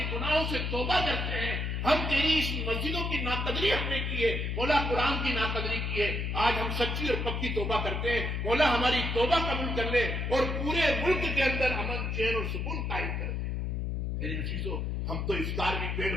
گناہوں سے توبہ کرتے ہیں، ہم تیری اس مسجدوں کی ناقدری ہم نے کی ہے، مولا قرآن کی ناقدری کی ہے، آج ہم سچی اور پکی توبہ کرتے ہیں، مولا ہماری توبہ قبول کر لے اور پورے ملک کے اندر امن، چین اور سکون قائم کر دے۔ میرے عزیزو، ہم تو افطار بھی پیٹ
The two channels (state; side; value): noise; left; hum, 1 dB below the sound